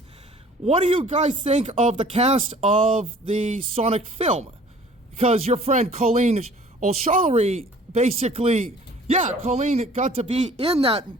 what do you guys think of the cast of the Sonic film? Because your friend Colleen O'Shaughnessy basically, Colleen got to be in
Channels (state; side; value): normal; both; correlation 0.51